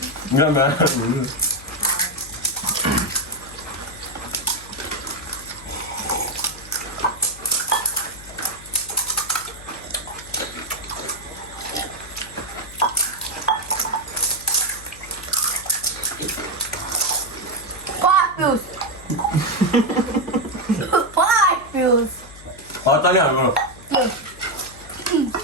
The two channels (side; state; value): left; noise; hum, 19 dB below the sound